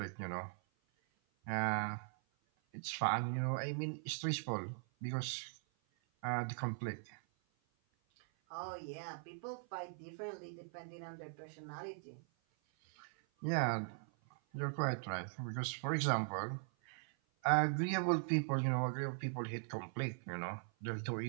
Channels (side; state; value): left; silent; 51 dB below the other